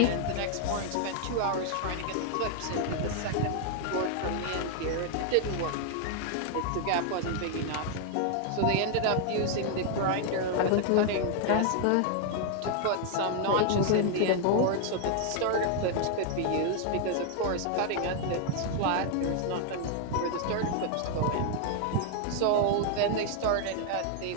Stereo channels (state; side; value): different; both; correlation 0.00